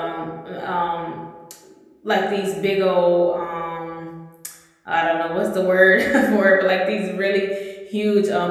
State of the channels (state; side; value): identical; both; correlation 1.00